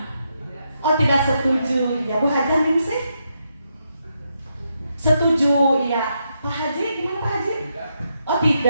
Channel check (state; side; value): inverted; both; correlation -0.81